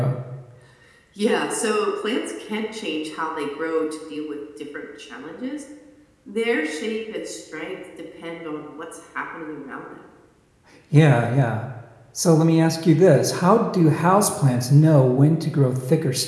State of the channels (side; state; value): both; identical; correlation 1.00